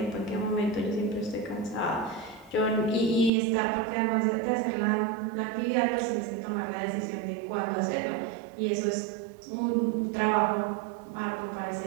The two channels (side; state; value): left; drops out; at 3.3 s